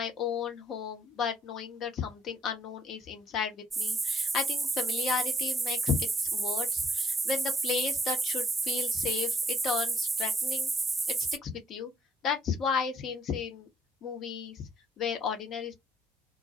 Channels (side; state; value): both; normal; correlation 0.67